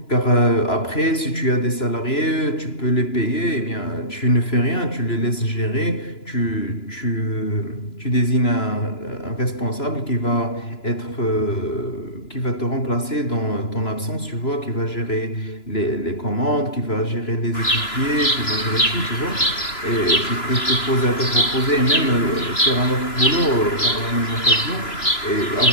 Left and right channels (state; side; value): late; right; 2.9 ms